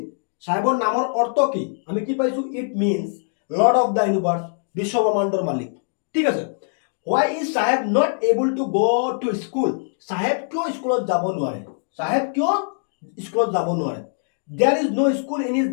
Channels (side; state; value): right; silent; digital silence